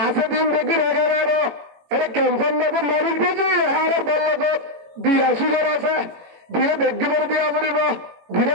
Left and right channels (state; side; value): late; left; 18 ms